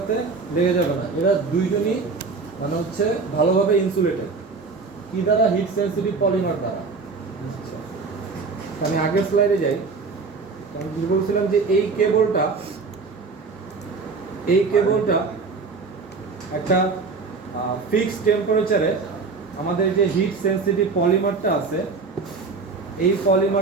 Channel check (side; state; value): left; quieter; 4.4 dB